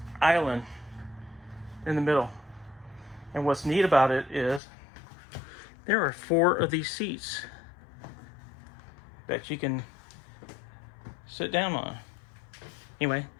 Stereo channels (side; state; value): right; drops out; at 4.6 s